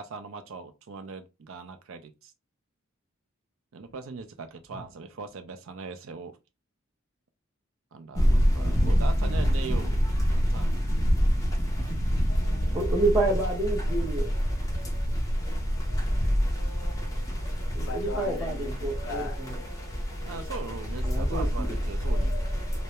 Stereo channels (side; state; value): both; normal; correlation 0.88